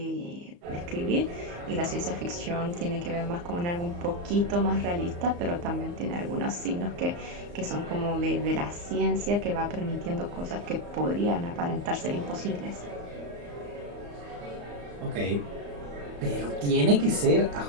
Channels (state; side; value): late; left; 34 ms